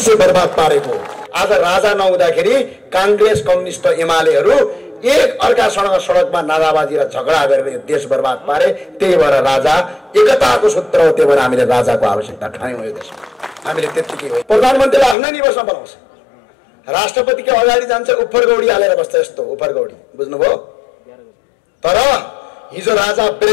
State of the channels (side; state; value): right; drops out; at 15.2 s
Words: बर्बाद पारेको। आज राजा नहुँदाखेरि कांग्रेस, कम्युनिस्ट, एमालेहरू एक अर्कासँग सडकमा नाराबाजी र झगडा गरेर यो देश बर्बाद पारे। त्यही भएर राजा एकताको सूत्र हो, त्यही भएर हामीले राजाको आवश्यकता ठान्यौँ यो देशमा। हामीले त्यतिकै हो। प्रधानमन्त्रीलाई आफ्नै निवासमा बनाउँछ, राष्ट्रपतिको अगाडि जान्छ, उफरगौडी हालेर बस्छ, यस्तो उफरगौडी, बुझ्नुभयो? तर हिजो राजा